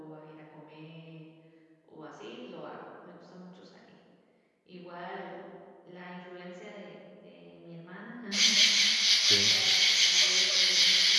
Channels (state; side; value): identical; both; correlation 1.00